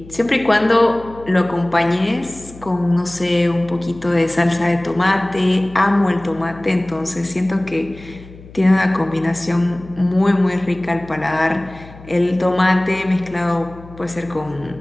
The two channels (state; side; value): noise; left; hum, 19 dB below the sound